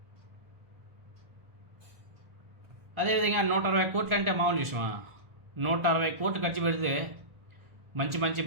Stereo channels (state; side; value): late; left; 1.4 ms